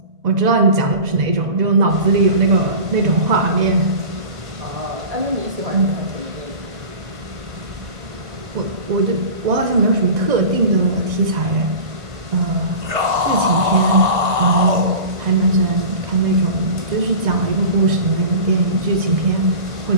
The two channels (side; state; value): left; late; 1.5 ms